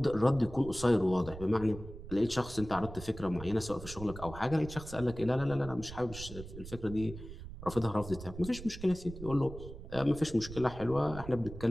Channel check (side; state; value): right; noise; rumble, 13 dB below the sound